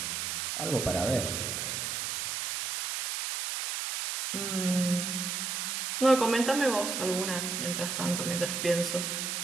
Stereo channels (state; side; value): noise; right; hiss, 2 dB below the sound